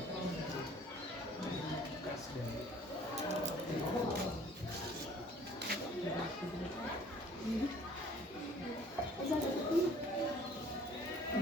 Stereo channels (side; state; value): both; normal; correlation 0.54